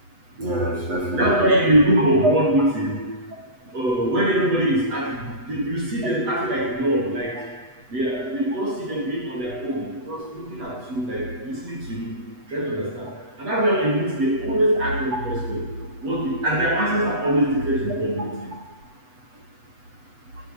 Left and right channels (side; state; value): left; late; 8.0 ms